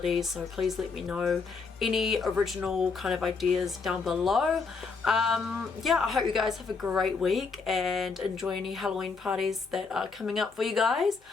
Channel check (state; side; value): quieter; right; 4.8 dB